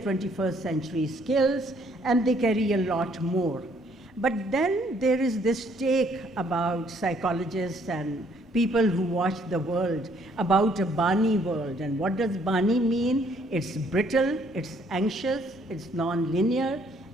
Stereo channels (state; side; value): normal; both; correlation 0.65